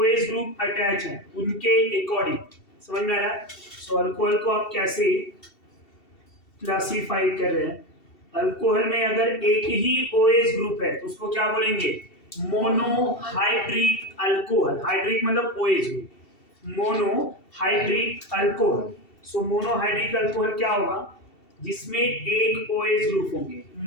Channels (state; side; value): late; right; 2.7 ms